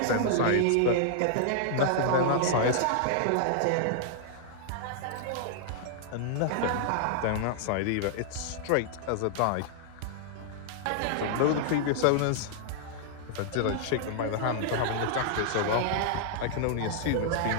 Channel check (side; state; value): both; different; correlation -0.01